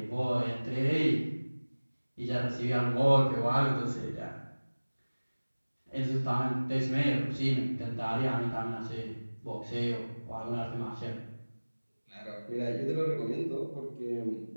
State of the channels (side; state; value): both; inverted; correlation -1.00